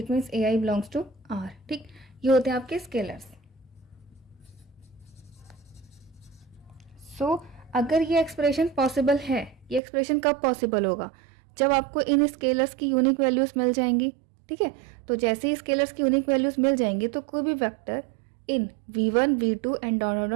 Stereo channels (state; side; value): drops out; left; at 9.8 s